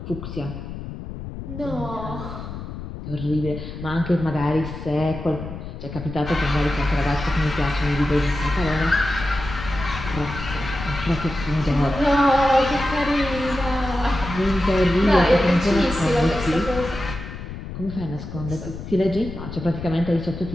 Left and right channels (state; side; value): noise; left; rumble, 9 dB below the sound